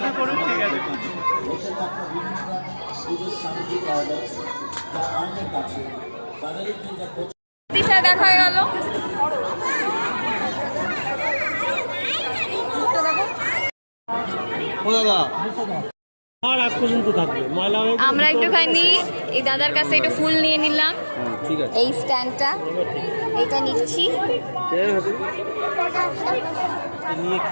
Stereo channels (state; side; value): inverted; both; correlation -1.00